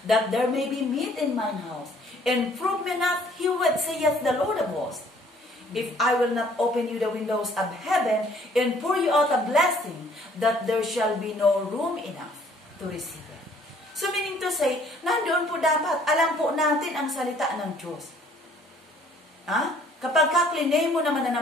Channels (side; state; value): both; normal; correlation 0.59